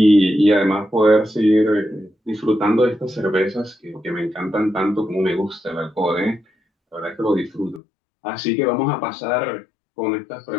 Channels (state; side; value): drops out; right; at 7.8 s